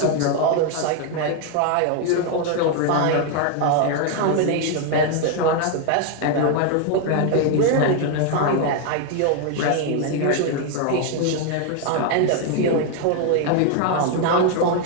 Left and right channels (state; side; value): different; both; correlation 0.00